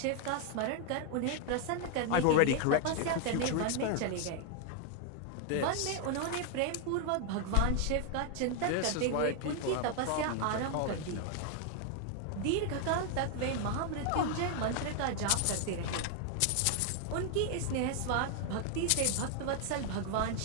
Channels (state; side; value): different; both; correlation 0.00